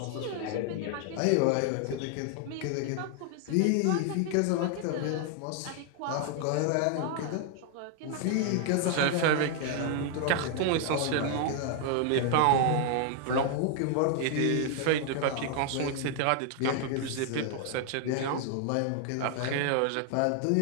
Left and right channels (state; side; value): different; both; correlation 0.00